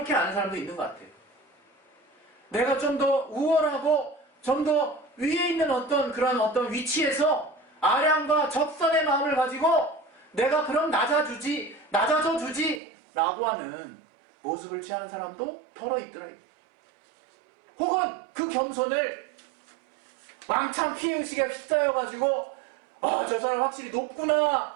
아는 사람도 있는 것 같아요. 내가 좀 더 우월하고 좀 더 위에 있는 어떤 위치에서 아량과 적선의 마음을 가지고 내가 그럼 낮아져 주지 라고 하는 모습을 취하는 사람도 더러 있더라고요. 혹은 그 겸손을 왕창 피해의식에 휩싸여가지고 저 사람 확실히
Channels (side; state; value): left; drops out; at 12.8 s